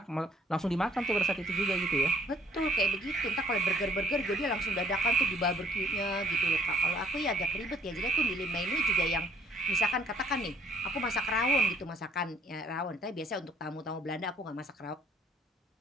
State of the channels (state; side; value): normal; both; correlation 0.59